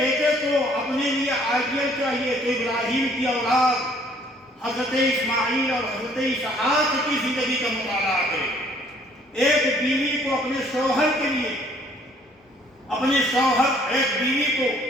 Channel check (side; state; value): both; normal; correlation 0.60